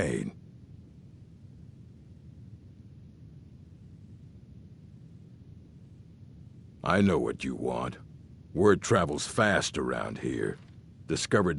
I know what you want. Word travels fast around here.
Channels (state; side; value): identical; both; correlation 1.00